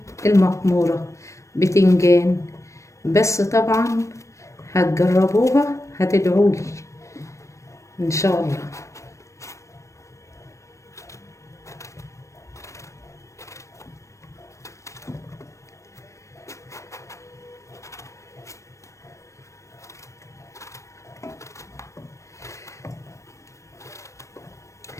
المقموره بتنجان. بس طبعا هتجربوها هتدعولي ان شاء الله.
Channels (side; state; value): right; late; 0.15 ms